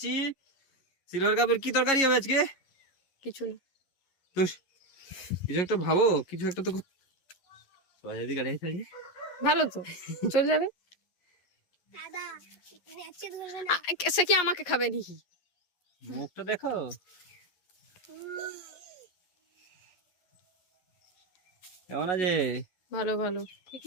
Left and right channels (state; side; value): late; right; 11 ms